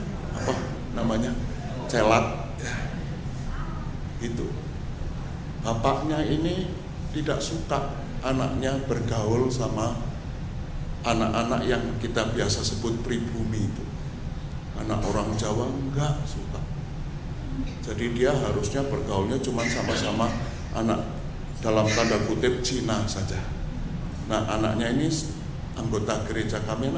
apa namanya celat ya. Itu bapaknya ini tidak suka anaknya bergaul sama anak-anak yang kita biasa sebut pribumi itu. Anak orang Jawa enggak suka. Jadi dia harusnya bergaulnya cuma sama-sama anak dalam tanda kutip Cina saja. Nah, anaknya ini anggota gereja kami,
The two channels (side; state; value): both; identical; correlation 1.00